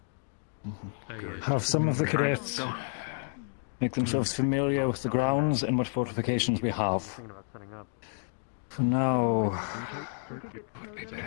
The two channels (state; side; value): silent; right; 58 dB below the other